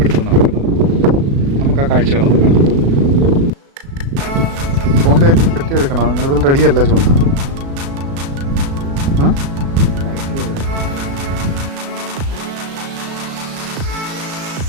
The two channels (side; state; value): left; late; 36 ms